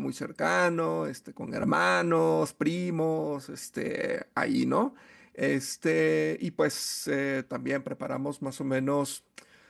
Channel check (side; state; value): both; identical; correlation 1.00